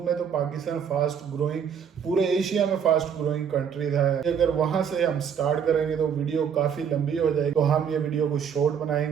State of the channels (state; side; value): quieter; left; 7.6 dB